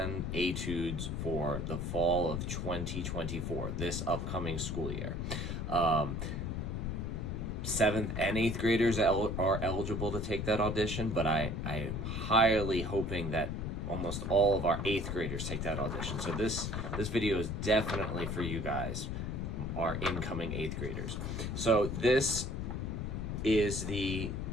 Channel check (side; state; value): left; noise; rumble, 3 dB below the sound